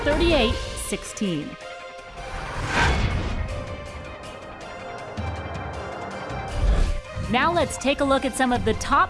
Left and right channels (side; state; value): both; identical; correlation 1.00